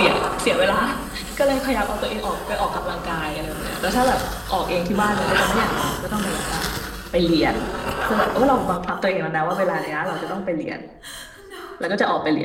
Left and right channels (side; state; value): both; identical; correlation 1.00